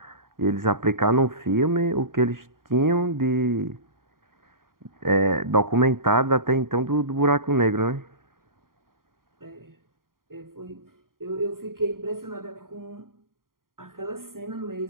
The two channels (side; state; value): left; late; 0.91 ms